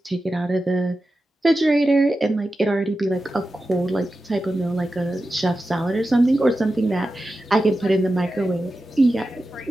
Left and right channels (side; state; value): both; normal; correlation 0.92